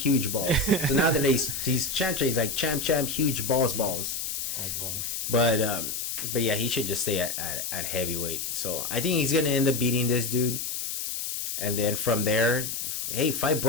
huge balls." So now that he's champ, he's like champ, huge balls. But yeah, he should just stay at heavyweight. So I think he's gonna end up beating this dude, and then from there, hey, fight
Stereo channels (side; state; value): left; noise; hiss, 4 dB below the sound